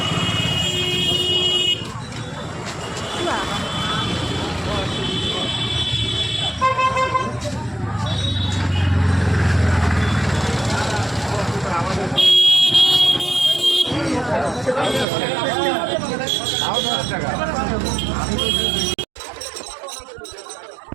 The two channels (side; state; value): left; drops out; at 15.1 s